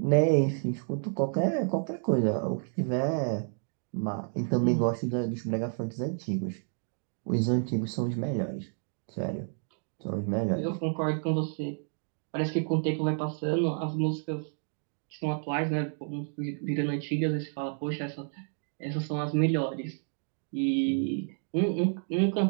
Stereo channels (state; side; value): silent; left; 58 dB below the other